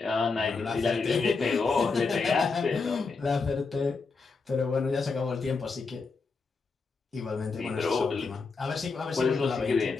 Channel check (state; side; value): quieter; right; 4.4 dB